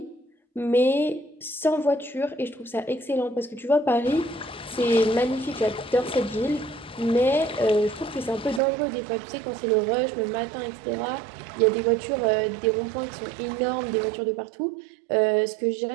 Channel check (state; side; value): drops out; left; at 8.6 s